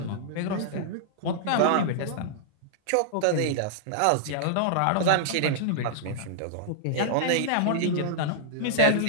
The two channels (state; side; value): different; both; correlation -0.01